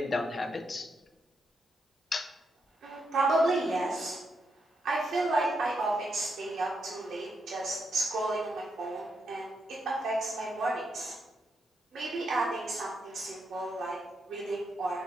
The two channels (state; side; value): normal; both; correlation 0.82